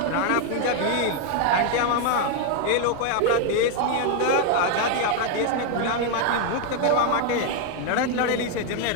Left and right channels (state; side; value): different; both; correlation 0.01